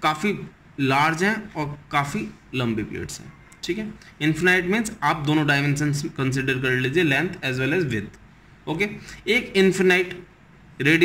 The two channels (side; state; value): both; identical; correlation 1.00